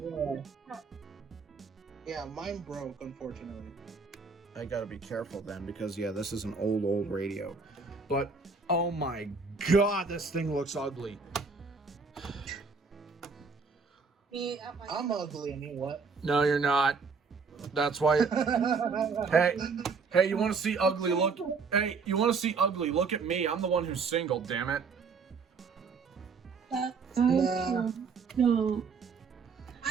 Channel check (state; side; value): quieter; left; 4.9 dB